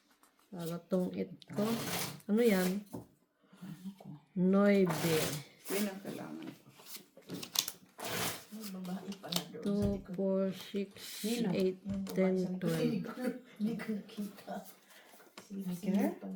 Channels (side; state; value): both; identical; correlation 1.00